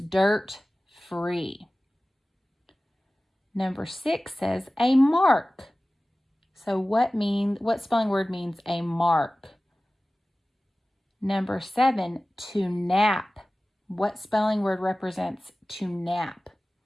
free? Number 6 says, a mark. So what spelling word means a mark? Number 7, to nap. What spelling word represents to nap?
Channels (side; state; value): both; normal; correlation 0.97